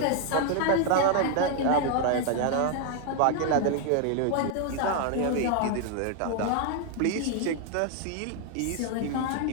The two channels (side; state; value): both; different; correlation 0.00